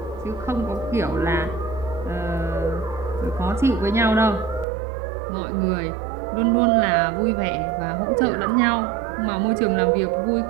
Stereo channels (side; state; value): left; drops out; at 4.7 s